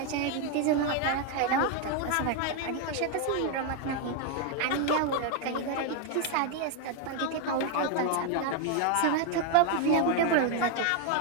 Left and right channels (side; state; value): both; different; correlation 0.01